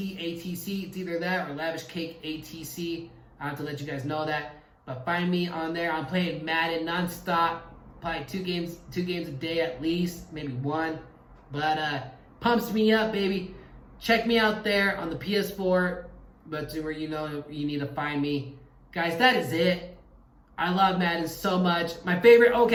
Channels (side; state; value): both; identical; correlation 1.00